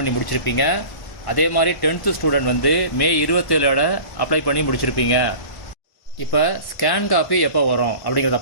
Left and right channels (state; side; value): late; right; 1.1 ms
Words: முடிச்சிருப்பீங்க. அதே மாதிரி 10th ஸ்டூடெண்ட் வந்து மே 27ஓட அப்ளை பண்ணி முடிச்சிருப்பீங்க. இப்போ ஸ்கேன் காப்பி எப்போ வரும் அப்படிங்கிறத